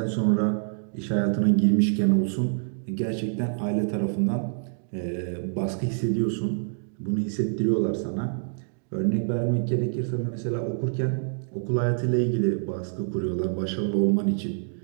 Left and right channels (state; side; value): silent; left; digital silence